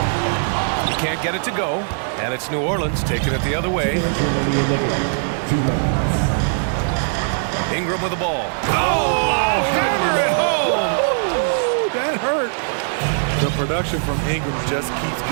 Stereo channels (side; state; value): left; silent; digital silence